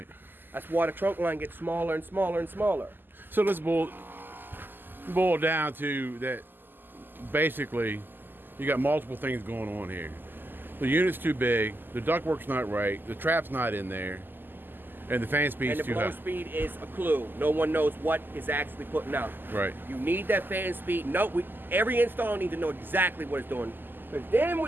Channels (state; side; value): late; left; 0.092 ms